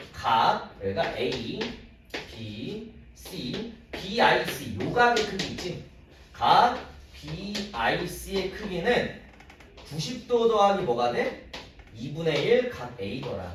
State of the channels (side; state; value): both; identical; correlation 1.00